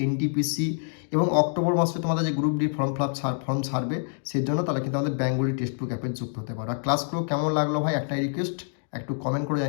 এনটিপিসি এবং অক্টোবর মাসে তোমাদের যে গ্রুপ ডি ফর্ম ছাড়বে সেই জন্য তাহলে কিন্তু আমাদের বেঙ্গলি টেক্সট বুক অ্যাপে যুক্ত হতে পারো। আর ক্লাসগুলো কেমন লাগলো ভাই একটাই রিকোয়েস্ট, একটু কমেন্ট করে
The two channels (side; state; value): right; silent; digital silence